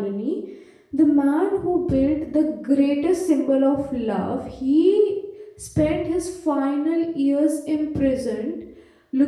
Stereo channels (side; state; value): both; identical; correlation 1.00